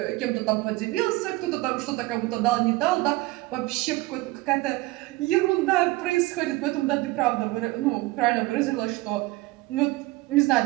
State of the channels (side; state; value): left; quieter; 20.6 dB